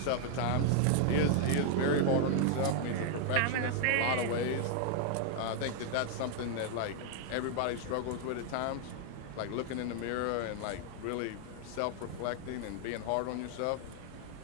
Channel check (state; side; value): different; both; correlation 0.00